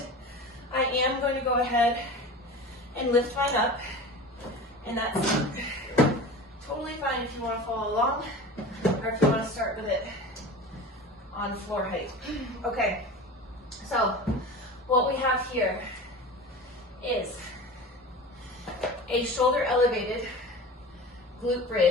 I am going to go ahead and lift mine up, and that's totally fine if you want to follow along, or if you want to start with it on floor height. Okay, so what we have here is a shoulder elevated glute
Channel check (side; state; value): both; normal; correlation 0.34